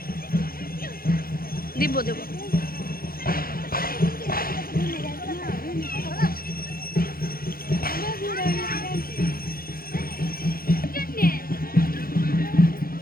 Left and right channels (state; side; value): late; right; 0.43 ms